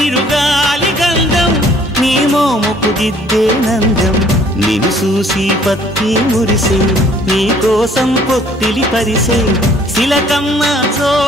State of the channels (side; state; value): both; normal; correlation 0.59